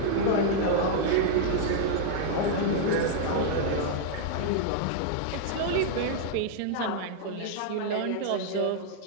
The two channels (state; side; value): different; both; correlation -0.01